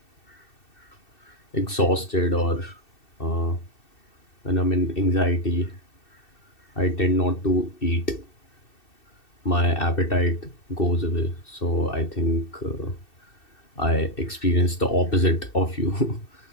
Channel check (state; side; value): late; right; 2.7 ms